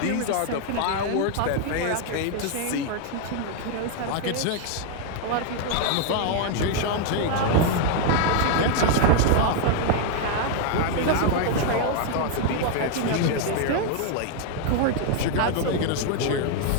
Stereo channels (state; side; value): different; both; correlation 0.00